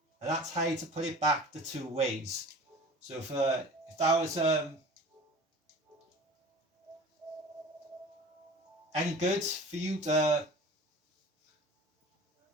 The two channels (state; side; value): normal; both; correlation 0.41